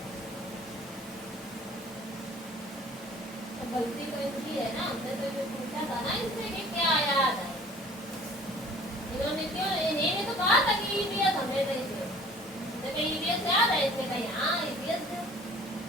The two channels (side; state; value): both; normal; correlation 0.50